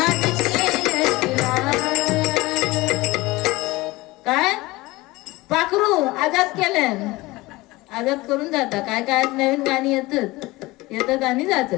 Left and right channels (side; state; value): right; quieter; 20.7 dB